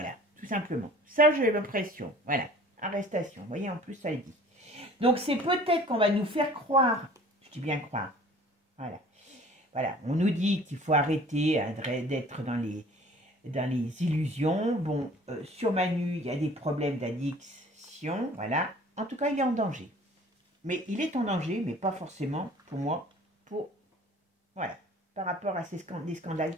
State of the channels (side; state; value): both; normal; correlation 0.49